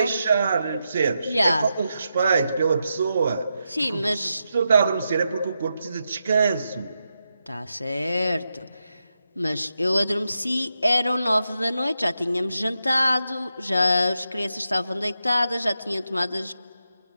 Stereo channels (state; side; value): inverted; both; correlation -0.86